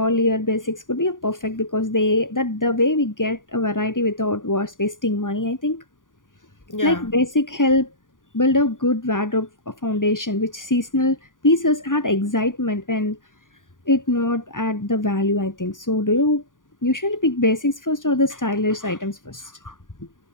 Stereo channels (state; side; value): late; right; 0.88 ms